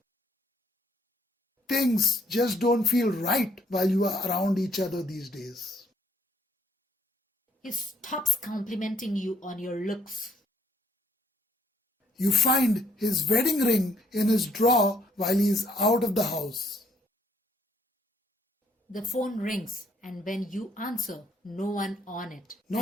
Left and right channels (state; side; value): normal; both; correlation 0.67